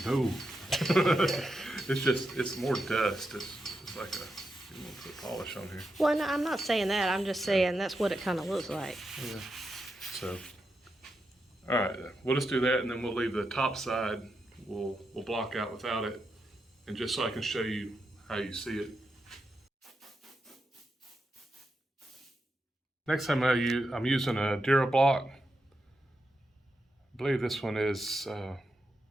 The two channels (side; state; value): both; normal; correlation 0.86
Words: No. it's more dust. It's like you want to put polish on here. Well, no, I'm not saying that. I'm just saying that's what it kind of looks like. Yeah. So, all right, we'll just do that, and then we'll leave the top side. We'll block out without it, and just so I can show you how you see it. Next time I'm using a DuraBlock. I believe this one is